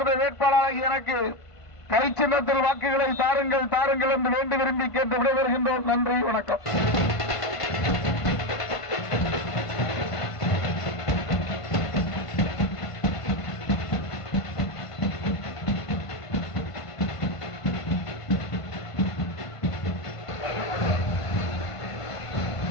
வேட்பாளராக எனக்கு கை சின்னத்தில் வாக்குகளை தாருங்கள் தாருங்கள் என்று வேண்டி விரும்பி கேட்டு விடைபெறுகின்றோம். நன்றி, வணக்கம்.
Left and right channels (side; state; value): right; late; 1.5 ms